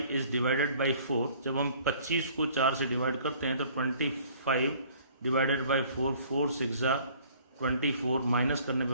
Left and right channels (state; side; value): inverted; both; correlation -0.55